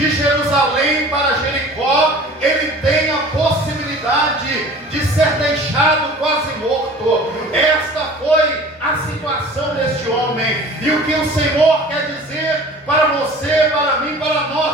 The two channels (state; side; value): normal; both; correlation 0.44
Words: Jerusalém para Jericó, ele tem a possibilidade de ser deixado quase morto. Esta foi a situação deste homem. E o que o Senhor quer dizer para você, para mim, para